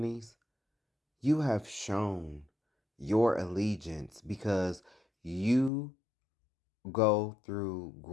you have shown your allegiance because you go through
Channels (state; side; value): drops out; right; at 5.7 s